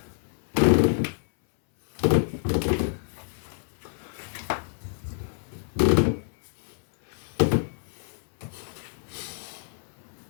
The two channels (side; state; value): right; silent; 60 dB below the other